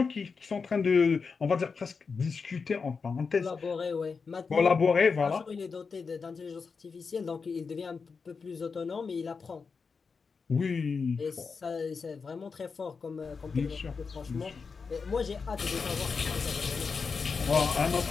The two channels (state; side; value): quieter; right; 5.1 dB